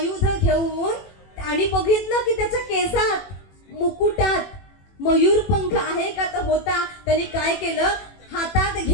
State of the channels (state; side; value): late; right; 21 ms